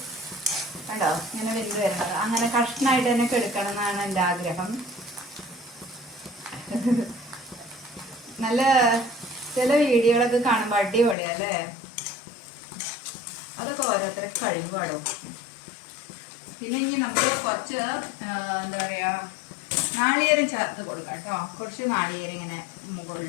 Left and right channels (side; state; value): right; drops out; at 11.2 s